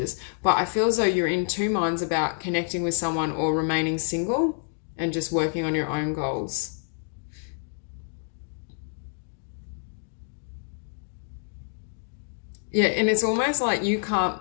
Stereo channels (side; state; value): right; silent; 60 dB below the other